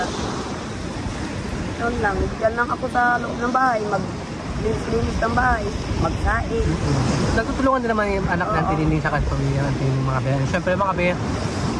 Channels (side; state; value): both; identical; correlation 1.00